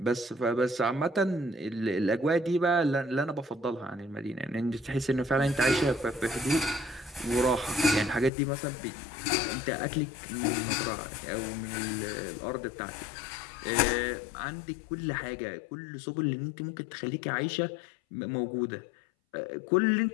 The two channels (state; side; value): drops out; right; at 8.3 s